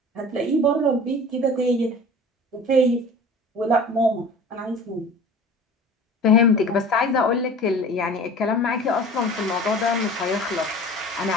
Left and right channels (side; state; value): both; normal; correlation 0.42